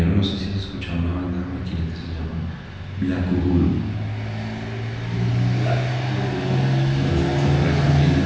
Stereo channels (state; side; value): identical; both; correlation 1.00